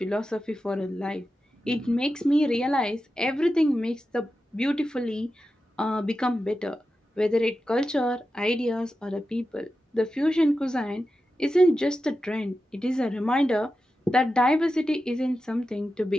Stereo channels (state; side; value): normal; both; correlation 0.91